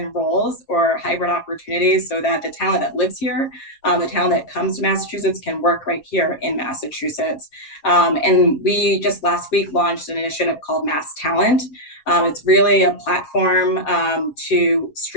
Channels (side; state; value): right; late; 7.4 ms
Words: roles or hybrid opportunities so that the talent that lives here, the talent that comes to Massachusetts can work right here in Massachusetts. And we just last week launched an initiative called Mass Talent. It's really a platform to